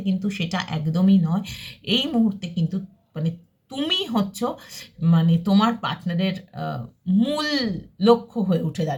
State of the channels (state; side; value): identical; both; correlation 1.00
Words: কিন্তু সেটা একদমই নয়। এই মুহূর্তে কিন্তু মানে তুমি হচ্ছ মানে তোমার পার্টনারের মূল লক্ষ্য হয়ে উঠে